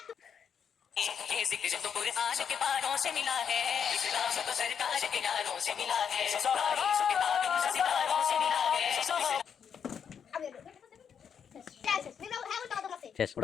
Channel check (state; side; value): quieter; right; 7.5 dB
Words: ये जिक्र तो कुरान के पारों से मिला है इस्लाम तो सरकार के यारों से मिला है तारीख किताबों से सितारों से मिला है শেষ